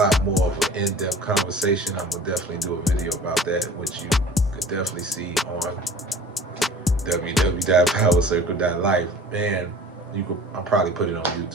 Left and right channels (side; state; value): both; normal; correlation 0.45